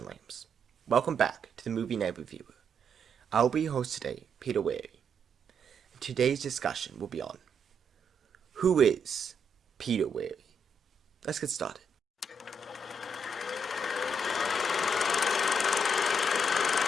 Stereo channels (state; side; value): normal; both; correlation 0.76